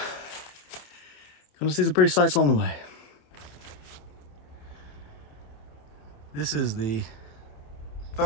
gonna see some pretty sights along the way. This is the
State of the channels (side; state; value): right; late; 27 ms